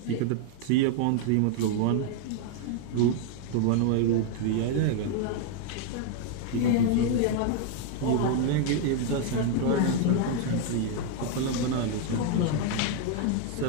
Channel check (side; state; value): both; different; correlation 0.00